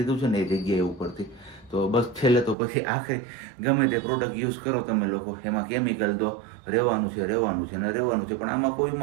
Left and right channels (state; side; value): drops out; left; at 2.6 s